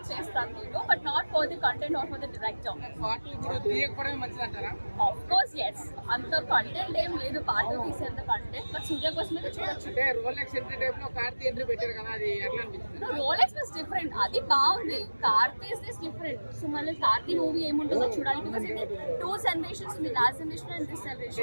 చేస్తాను నేను, but not for the content or for the director. Of course yes, అంత కంటెంట్ ఏం లేదు పార్ట్ తీసేంత కంటెంట్, బట్ సూర్య కోసం అయితే చూడొచ్చు. రోలెక్స్ వాస్ డిఫరెంట్, అది బాగుంది. Karthi is different. సో మళ్ళీ కార్తీ మూవీ ఏముంటుందో చూడాలి, బికాస్ ఇది 2 సెలబ్రేషన్స్ ఉంది, last celebration and this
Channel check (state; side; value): inverted; both; correlation -1.00